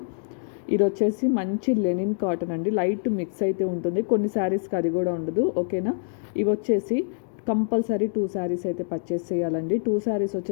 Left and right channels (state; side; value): silent; right; digital silence